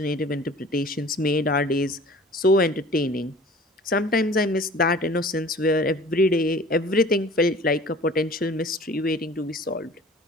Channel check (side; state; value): both; normal; correlation 0.46